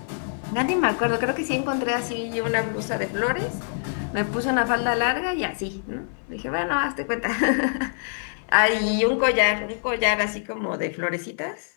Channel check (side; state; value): right; silent; digital silence